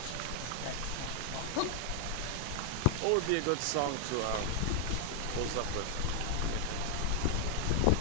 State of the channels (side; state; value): both; different; correlation 0.00